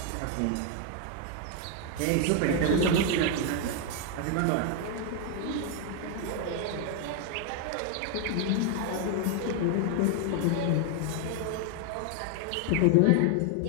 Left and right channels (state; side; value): different; both; correlation 0.00